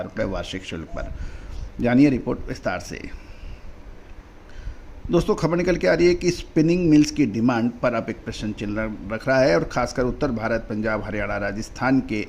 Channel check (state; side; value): identical; both; correlation 1.00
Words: रुपये वार्षिक शुल्क पर। जानिए रिपोर्ट विस्तार से। दोस्तों खबर निकल के आ रही है कि स्पिनिंग मिल्स की डिमांड पर अब एक प्रश्न चिन्ह रख रहा है और खासकर उत्तर भारत, पंजाब, हरियाणा, राजस्थान के